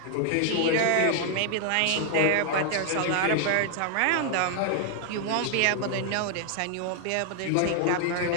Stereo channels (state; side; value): different; both; correlation 0.00